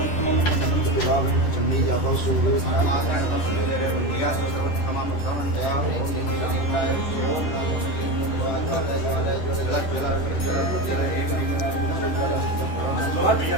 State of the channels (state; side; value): late; right; 11 ms